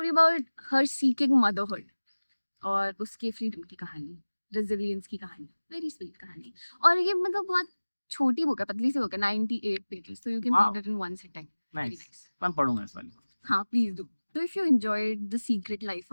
about her seeking motherhood और उसके फ्रीडम की कहानी, रेजिलियंस की कहानी, वेरी स्वीट कहानी। और ये मतलब बहुत छोटी बुक है, पतली सी बुक है, 98 पेजेस, तो you can read it in one sitting. Nice, मैं पढ़ूंगा इस वाली। हाँ, please do. So if you enjoyed The Secret Life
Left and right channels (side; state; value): both; inverted; correlation -1.00